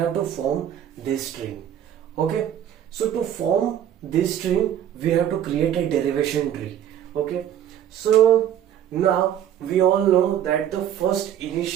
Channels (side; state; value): left; quieter; 10.4 dB